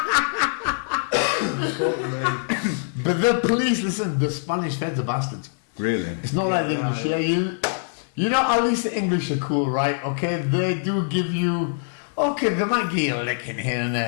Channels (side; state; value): right; silent; 63 dB below the other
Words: Fuck me. But the police, listen, the Spanish feds are bastards. Really? It's not like the English. Yeah. You know, at least the English are cool, right? Okay, they do give you. Okay, they might give you a licking here and